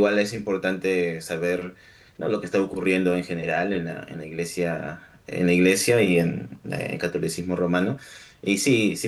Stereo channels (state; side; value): identical; both; correlation 1.00